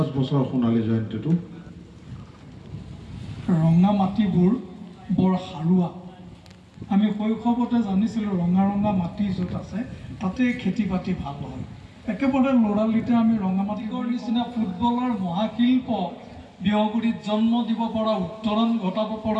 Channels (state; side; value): identical; both; correlation 1.00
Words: বছৰ সোণালী জয়ন্তীটো ৰঙা মাটিবোৰ বৰ সাৰুৱা আমি শৈশৱতে জানিছিলোঁ ৰঙা ৰঙা মাটি য'ত আছে তাতে খেতি বাতি ভাল হয় একেবাৰে ল'ৰালিতে আমি ৰঙা মাটিৰ নিচিনা ফুটবলৰ মহাশিল্প বিহগুৰিত জন্ম দিব পৰা উত্তৰণ ঘটাব